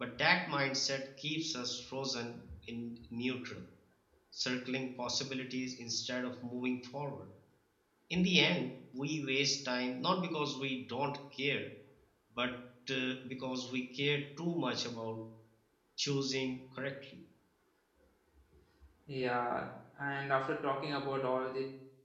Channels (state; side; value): identical; both; correlation 1.00